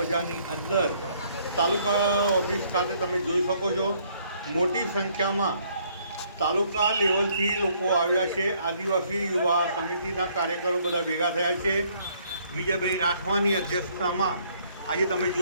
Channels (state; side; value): inverted; both; correlation -0.65